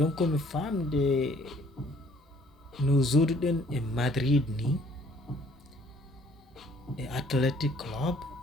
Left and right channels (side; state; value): both; normal; correlation 0.59